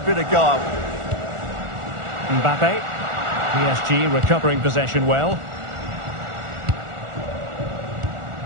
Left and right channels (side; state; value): left; late; 1.4 ms